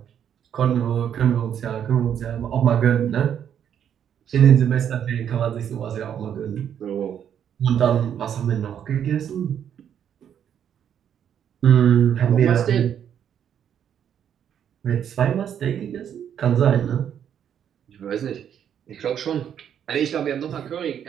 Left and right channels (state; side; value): quieter; left; 9.0 dB